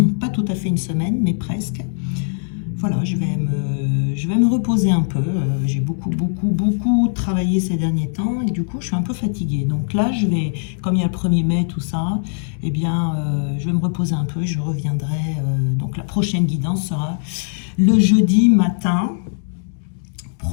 pas tout à fait une semaine mais presque. Voilà, je vais me reposer un peu. J'ai beaucoup travaillé ces derniers temps et du coup, je suis un peu fatiguée. Donc là, comme il y a le 1er mai, tout ça, eh bien, je vais me reposer un peu et je reviendrai. Donc la prochaine guidance sera le jeudi matin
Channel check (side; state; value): right; silent; digital silence